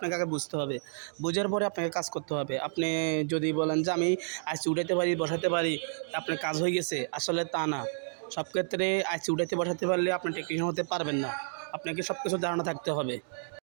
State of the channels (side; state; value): left; silent; digital silence